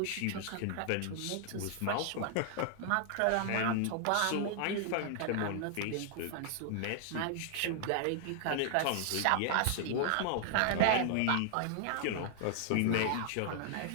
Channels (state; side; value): different; both; correlation -0.01